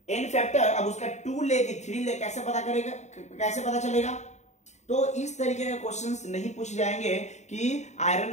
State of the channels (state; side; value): late; right; 0.33 ms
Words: N factor अब उसका 2 ले कि 3 ले कैसे पता करेगा, कैसे पता चलेगा? तो इस तरीके के क्वेश्चंस नहीं पूछे जाएंगे कि